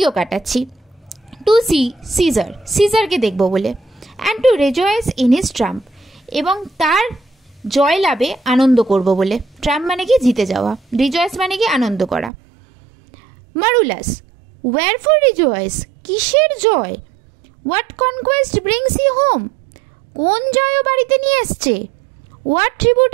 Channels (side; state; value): left; drops out; at 12.3 s